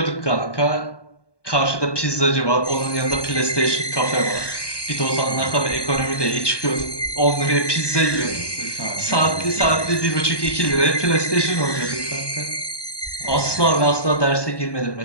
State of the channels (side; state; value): right; late; 1.2 ms